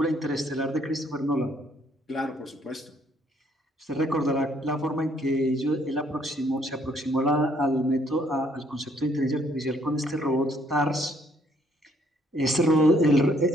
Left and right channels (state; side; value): normal; both; correlation 0.67